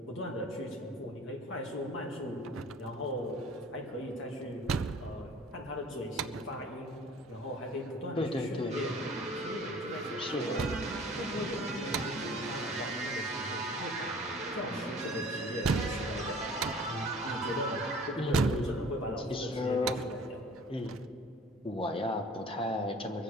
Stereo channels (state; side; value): normal; both; correlation 0.47